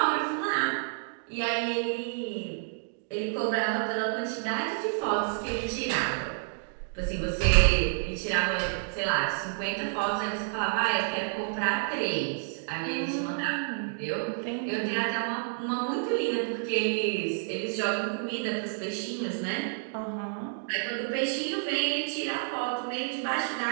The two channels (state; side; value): silent; left; digital silence